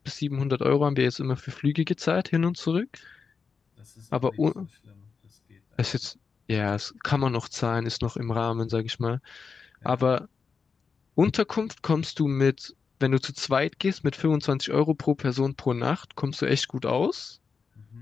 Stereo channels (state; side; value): quieter; right; 5.4 dB